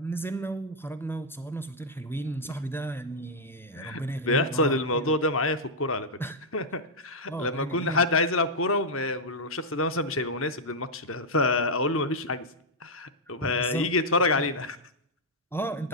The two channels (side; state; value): both; normal; correlation -0.04